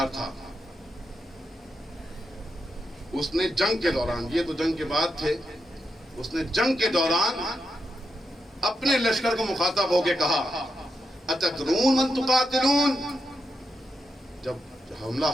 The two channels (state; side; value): normal; both; correlation 0.84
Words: تھا، اس نے جنگ کے دوران، یہ تو جنگ کے بعد تھے، اس نے جنگ کے دوران اپنے لشکر کو مخاطب ہو کے کہا اتدرون من تقاتلون. جب حملہ